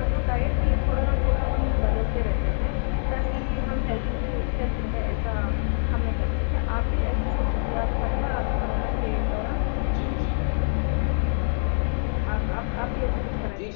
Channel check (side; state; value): right; silent; 62 dB below the other